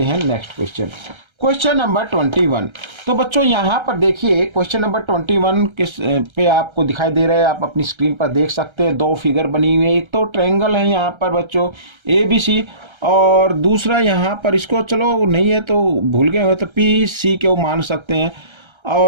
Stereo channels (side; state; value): left; late; 1.3 ms